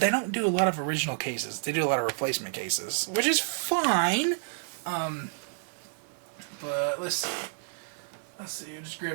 don't do a lot of original cases. They do a lot of replacement cases, which is fine. But let's see. I'll just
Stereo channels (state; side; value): silent; left; 58 dB below the other